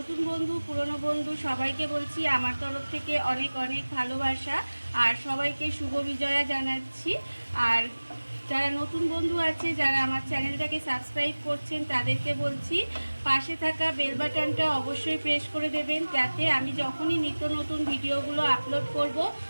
বন্ধু পুরনো বন্ধু সবাইকে বলছি আমার তরফ থেকে অনেক অনেক ভালোবাসা আর সবাইকে শুভ বিজয়া জানাচ্ছি। আর যারা নতুন বন্ধু আছে, যারা আমার চ্যানেলটাকে সাবস্ক্রাইব করছেন, তাদেরকে বলছি পাশে থাকা বেল বাটনটা অবশ্যই প্রেস করে দেবেন, যাতে আমি যখনই নিত্য নতুন ভিডিওগুলো আপলোড করব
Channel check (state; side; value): inverted; both; correlation -1.00